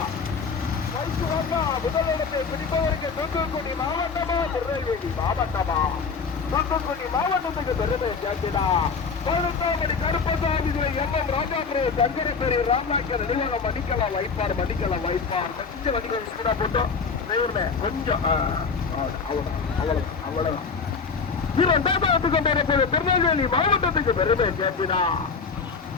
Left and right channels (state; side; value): quieter; right; 5.3 dB